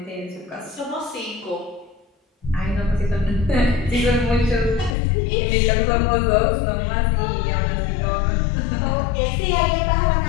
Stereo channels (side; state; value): right; drops out; at 5.0 s